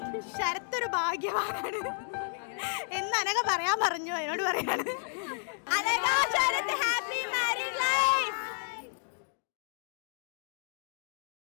ശരത്തൊരു ഭാഗ്യവാനാണ് എന്ന് അനഘ പറയാൻ പറഞ്ഞു. എന്നോട് പറയാണ് അനഘ ശരത്ത് ഹാപ്പി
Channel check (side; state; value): right; silent; digital silence